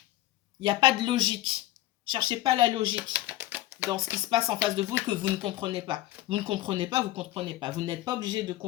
Il n'y a pas de logique. Cherchez pas la logique. dans ce qui se passe en face de vous et que vous ne comprenez pas. Vous ne comprenez pas, vous ne comprenez pas. Vous n'êtes pas obligé de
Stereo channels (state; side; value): quieter; right; 15.7 dB